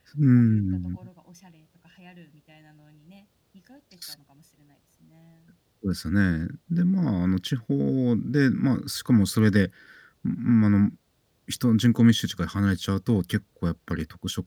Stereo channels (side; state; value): both; identical; correlation 1.00